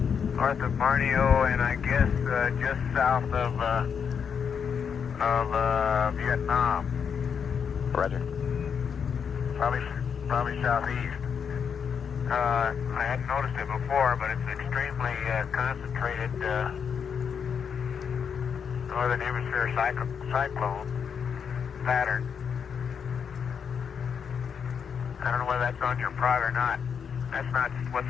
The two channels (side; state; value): right; quieter; 7.0 dB